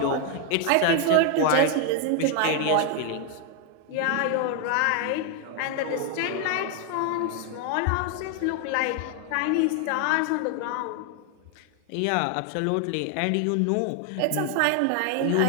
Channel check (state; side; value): different; both; correlation 0.00